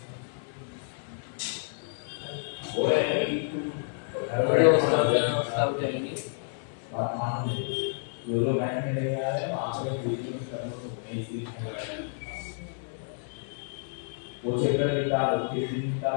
वीडियो सब चलेंगी। वो चेकर निकालो, किस दिन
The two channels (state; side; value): silent; right; digital silence